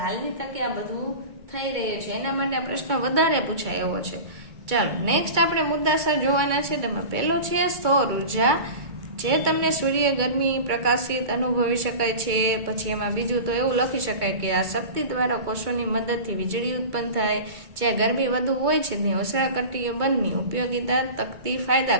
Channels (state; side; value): late; left; 2.2 ms